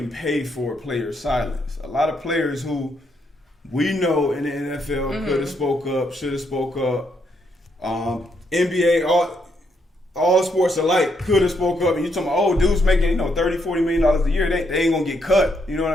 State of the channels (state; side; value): normal; both; correlation 0.76